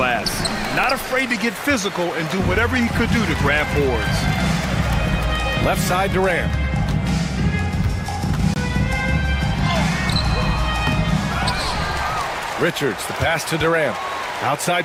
Not afraid to get physical and do whatever he could do to grab boards. Left side, Durant. Richards, the pass to Durant.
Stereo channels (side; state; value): both; identical; correlation 1.00